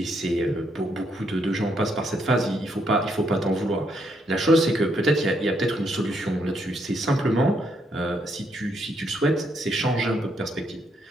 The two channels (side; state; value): both; normal; correlation 0.75